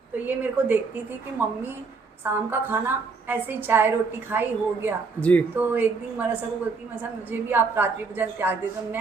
तो ये मेरे को देखती थी कि मम्मी शाम का खाना ऐसे ही चाय रोटी खाई हो गया जी। तो एक दिन मरसा को बोलती, मरसा मुझे भी आप रात्रि भोजन त्याग दे दो।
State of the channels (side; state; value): left; quieter; 4.5 dB